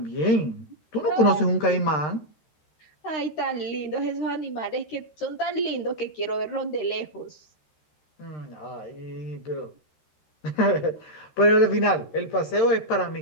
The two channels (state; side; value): late; right; 13 ms